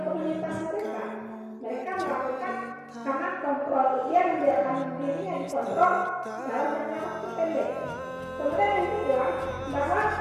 komunitas mereka. Mereka melakukan karena kontrol dia membiarkan dirinya dikontrol dalam jangka waktu pendek. Kemudian yang kedua, bahwa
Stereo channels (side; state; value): both; identical; correlation 1.00